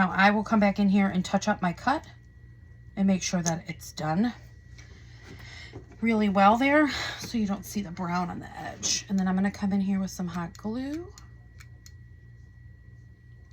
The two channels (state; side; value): identical; both; correlation 1.00